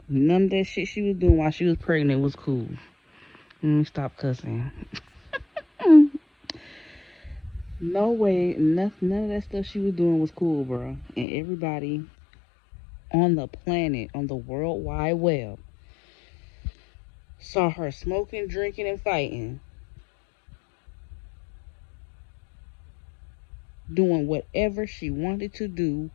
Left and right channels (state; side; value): drops out; right; at 11.2 s